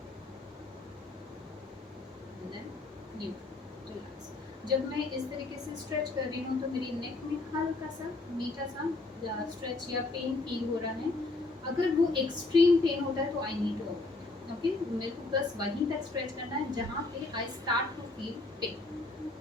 And then neutral, relax. जब मैं इस तरीके से stretch कर रही हूँ तो मेरी नेक में हल्का सा मीठा सा स्ट्रेच या पेन फील हो रहा है। अगर वो एक्सट्रीम पेन होता है तो आई नीड टू ओके, मेरे को बस वहीं तक स्ट्रेच करना है जहाँ पे I start to feel pain,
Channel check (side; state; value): right; quieter; 3.2 dB